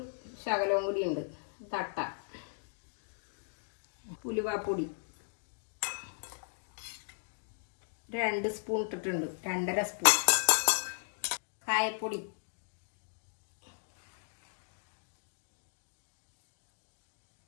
ശകലവും കൂടി ഉണ്ട്. തട്ട ഉലുവാപ്പൊടി 2 സ്പൂൺ ഇട്ടിട്ടുണ്ട്, 2.5 സ്പൂൺ. കായപ്പൊടി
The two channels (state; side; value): silent; right; digital silence